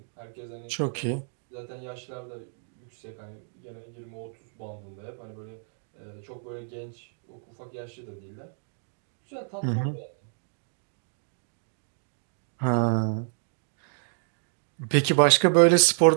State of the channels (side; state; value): left; silent; digital silence